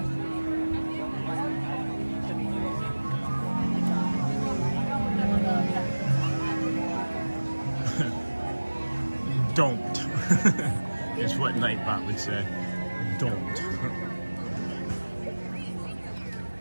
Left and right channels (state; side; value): inverted; both; correlation -1.00